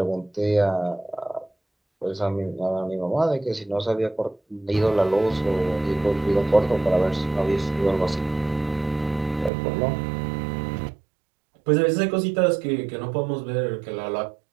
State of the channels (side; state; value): left; drops out; at 9.5 s